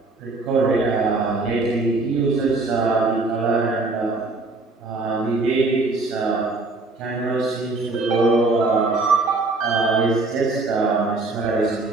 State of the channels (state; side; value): quieter; left; 3.4 dB